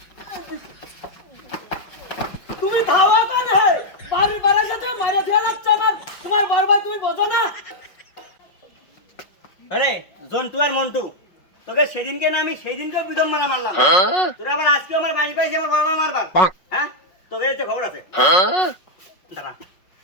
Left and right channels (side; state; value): right; late; 5.4 ms